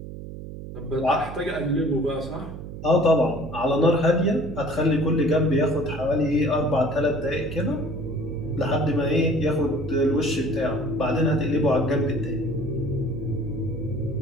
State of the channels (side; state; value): right; noise; hum, 11 dB below the sound